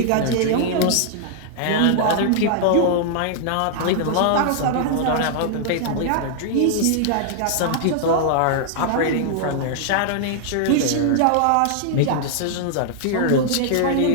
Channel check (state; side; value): different; both; correlation -0.01